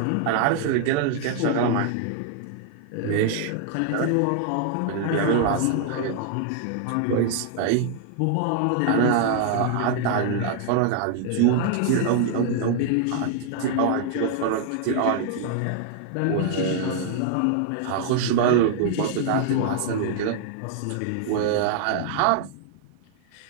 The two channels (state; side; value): different; both; correlation 0.00